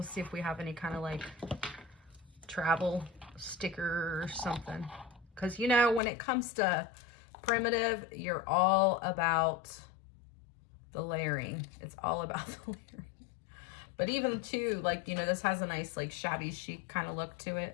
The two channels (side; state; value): right; drops out; at 6.0 s